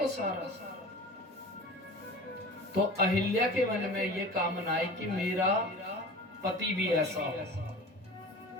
सारा, तो अहिल्या के मन में ये कामना आई कि मेरा पति भी ऐसा हो।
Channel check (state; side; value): normal; both; correlation 0.38